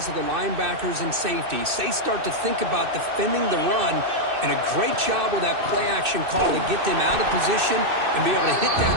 of the linebackers and safeties. They start to think about defending the run, and a great job with that play-action call to get them out of position and be able to hit that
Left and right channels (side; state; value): left; late; 2.6 ms